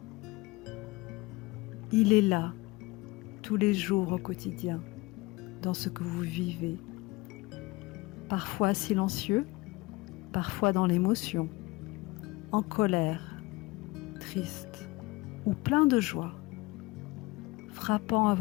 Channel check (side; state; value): right; quieter; 22.0 dB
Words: Il est là, tous les jours au quotidien, dans ce que vous vivez. Parfois silencieux, parfois dans l'émotion, en colère, triste ou plein de joie, frappant à